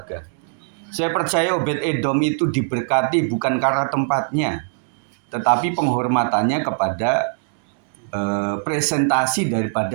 Saya percaya Obed-Edom itu diberkati bukan karena tempatnya, tetapi penghormatannya kepada presentasi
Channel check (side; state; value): left; silent; digital silence